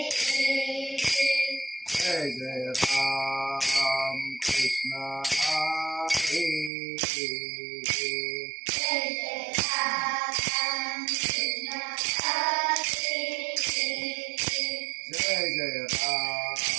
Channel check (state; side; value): drops out; left; at 6.7 s